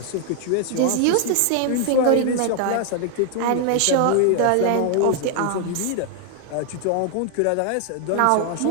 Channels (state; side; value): different; both; correlation 0.00